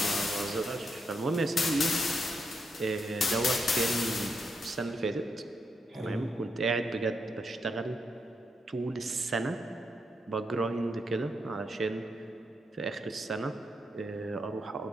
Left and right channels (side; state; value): both; normal; correlation 0.81